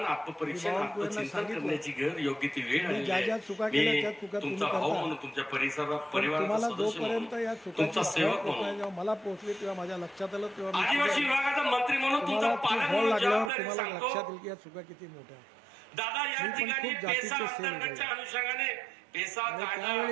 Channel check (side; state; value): left; drops out; at 13.5 s